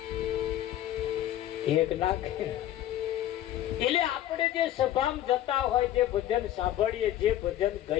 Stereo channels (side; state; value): right; quieter; 12.6 dB